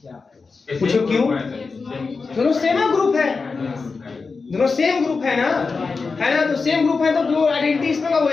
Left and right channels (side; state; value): right; quieter; 4.5 dB